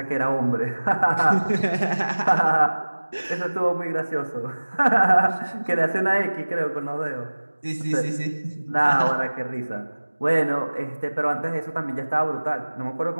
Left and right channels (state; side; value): inverted; both; correlation -1.00